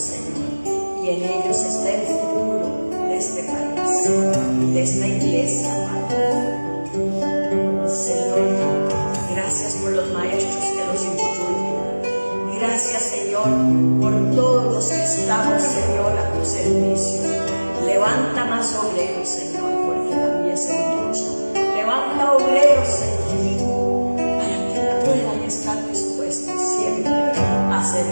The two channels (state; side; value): inverted; both; correlation -1.00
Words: y en ellos está el futuro de este país, de esta iglesia, Padre. Señor, gracias por los maestros que los instruyen. Gracias, Señor, por todos los que estamos, Señor, a tu servicio. Levanta más obreros, Señor, porque la mies es mucha. Levanta obreros, Señor, para que puedan estar dispuestos siempre a